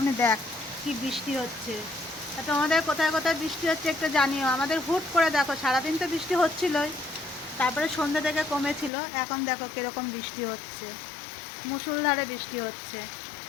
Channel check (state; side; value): drops out; right; at 8.9 s